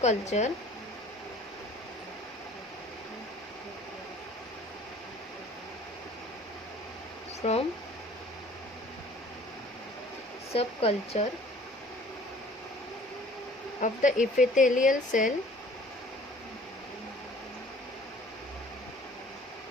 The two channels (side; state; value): both; normal; correlation 0.51